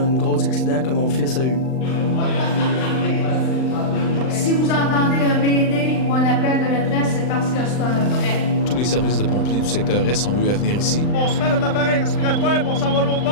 gros accident que mon fils a eu. Si vous entendez un Mayday ou un appel de maîtresse, c'est parce que c'est un vrai. Tous les services de pompiers du secteur Est ont eu à venir ici. On se met notre appareil respiratoire et on s'en va l'autre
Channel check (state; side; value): late; right; 39 ms